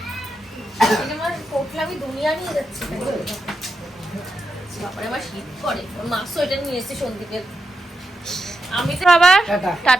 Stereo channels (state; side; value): normal; both; correlation 0.87